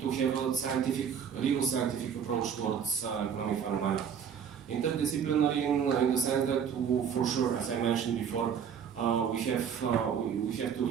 have a real scientific approach towards economic phenomena. Interdisciplinary in the sense that, for sure, as I mentioned before, we have to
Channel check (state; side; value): quieter; left; 7.6 dB